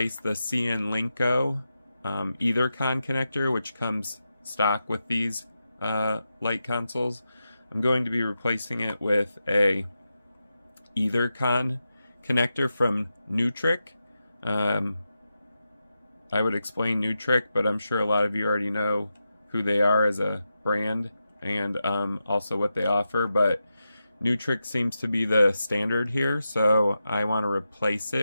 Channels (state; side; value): inverted; both; correlation -0.89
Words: the CN Linko EtherCon connector, which comes stock with these light consoles. I'm going to be replacing it with a EtherCon connector from Nutric. I would explain Nutric, but I'm sure a lot of you already know who they are as a brand and also what they offer, but Nutric seems to be the standard here, so I want to replace